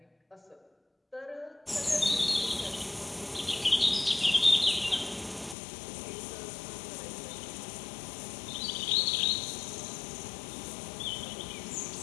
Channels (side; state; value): right; drops out; at 5.6 s